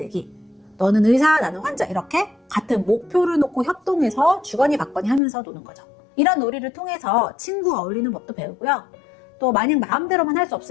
너는 의사, 나는 환자 이렇게 같은 목표를 놓고 협동해서 주거니 받거니 하면서 노는 거죠. 이런 놀이를 통해서 친구와 어울리는 법도 배우고요. 또 마냥 마음대로만 할 수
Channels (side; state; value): right; drops out; at 5.2 s